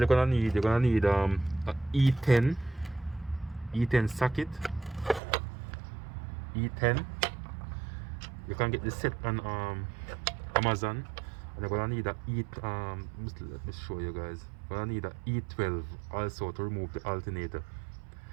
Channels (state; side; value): drops out; left; at 5.2 s